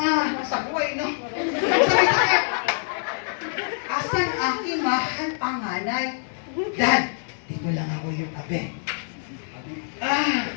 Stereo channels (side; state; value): right; silent; digital silence